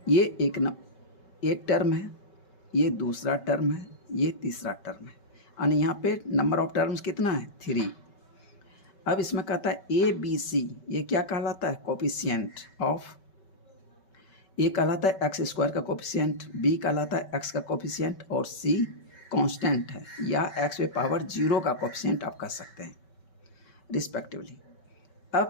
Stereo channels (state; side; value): late; right; 5.2 ms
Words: ये एक टर्म है, ये दूसरा टर्म है, ये तीसरा टर्म है। यानी यहाँ पे नंबर ऑफ टर्म्स कितना है, 3। अब इसमें कहता है ए बी सी, ये क्या कहलाता है, कोफिशिएंट ऑफ। ए कहलाता है एक्स स्क्वायर का कोफिशिएंट, बी कहलाता है एक्स का कोफिशिएंट, और सी कांस्टेंट है या एक्स पे पावर जीरो का कोफिशिएंट आप कह सकते हैं रिस्पेक्टिवली।